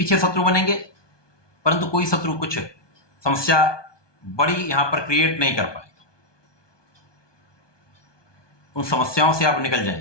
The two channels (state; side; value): late; right; 1.2 ms